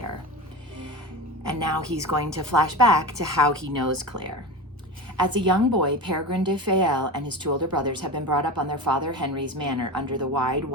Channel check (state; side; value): normal; both; correlation 0.27